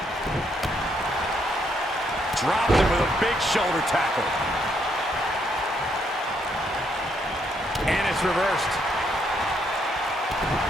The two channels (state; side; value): normal; both; correlation 0.74